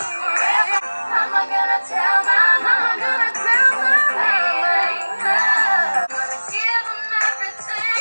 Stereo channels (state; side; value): inverted; both; correlation -1.00